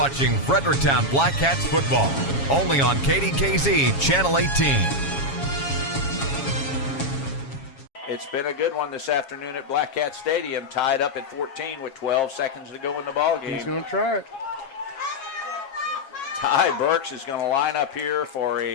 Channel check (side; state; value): right; late; 7.3 ms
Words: Fredericktown Black Cats football, only on KDKZ Channel 18. It's been a good one this afternoon at Black Cat Stadium, tied up at 14 with 12 seconds to go in the ball game. He's going to try it. Ty Burks is going to line up here for